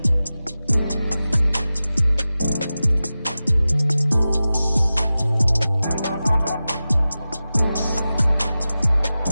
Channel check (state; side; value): inverted; both; correlation -0.95